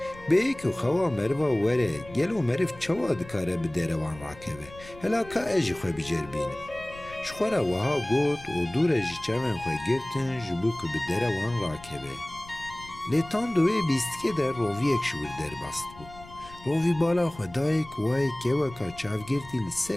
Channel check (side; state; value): left; noise; rumble, 19 dB below the sound